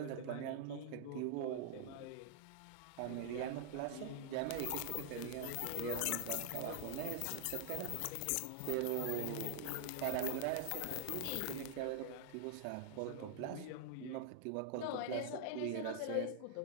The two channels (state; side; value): different; both; correlation -0.01